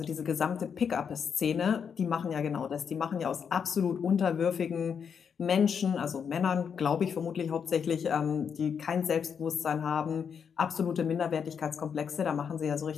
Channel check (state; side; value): quieter; right; 7.0 dB